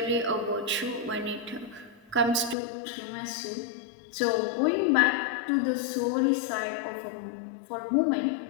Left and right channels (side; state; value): right; drops out; at 2.6 s